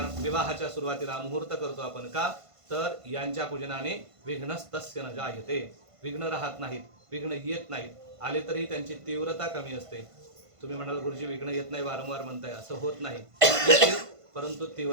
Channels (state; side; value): late; left; 1.5 ms